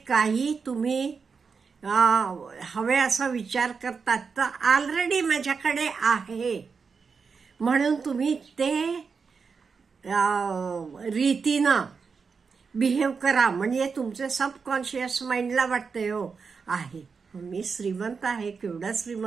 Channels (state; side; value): quieter; left; 5.3 dB